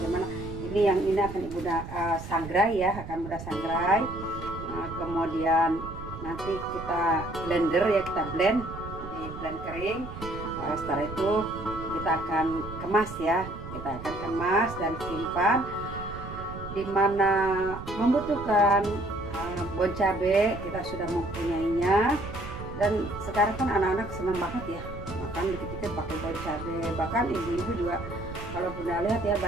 ini akan Bunda sangrai ya, akan Bunda sangrai. Nah, kemudian nanti kita blender ya, kita blend kering. Setelah itu kita akan kemas ya, kita akan kemas dan simpan dimana membutuhkan. Bon cabai kita sudah mempunyainya, dan sekarang kan anak-anak senang banget ya makan dikit-dikit pakai bon cabai. Bahkan ibu-ibu juga, kalau Bunda lihat ya,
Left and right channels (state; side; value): noise; right; rumble, 11 dB below the sound